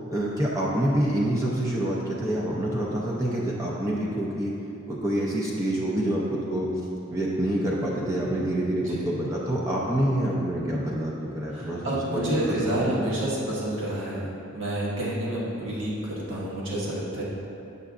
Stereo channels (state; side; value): normal; both; correlation 0.67